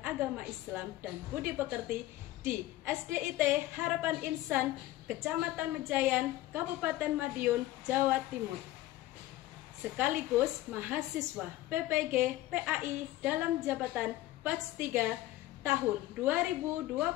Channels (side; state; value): right; quieter; 16.1 dB